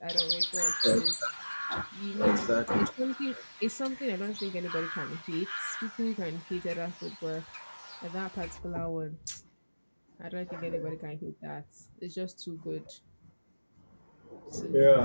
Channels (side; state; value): both; inverted; correlation -1.00